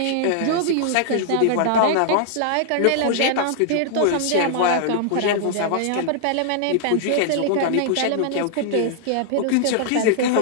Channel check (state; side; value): different; both; correlation -0.01